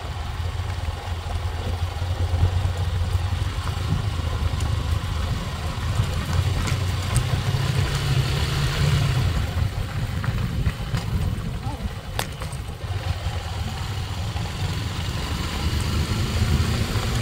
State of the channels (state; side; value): identical; both; correlation 1.00